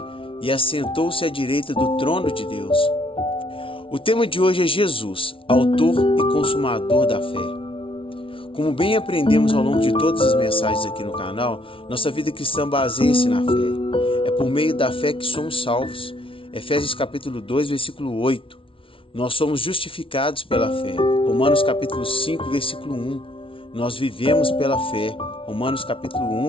e assentou-se à direita do trono de Deus. O tema de hoje é Jesus, autor e consumador da fé. Como bem aprendemos ao longo de todas as mensagens aqui no canal, nossa vida cristã baseia-se na fé. É por meio da fé que somos salvos. Efésios capítulo 2, versículo 8. Nós somos justificados pela fé. Romanos capítulo 5, versículo 1. Nós vivemos pela fé. Romanos capítulo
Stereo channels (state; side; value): late; right; 0.25 ms